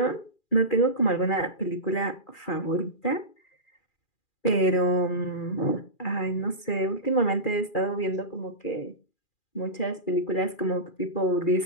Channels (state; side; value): late; right; 2.4 ms